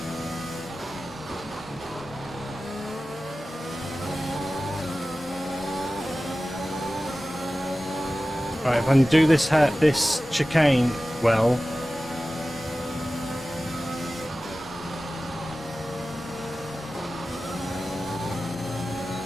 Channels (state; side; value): normal; both; correlation 0.96